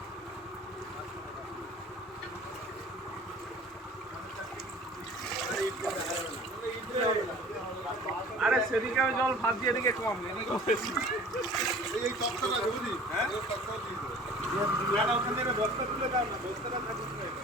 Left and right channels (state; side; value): normal; both; correlation 0.45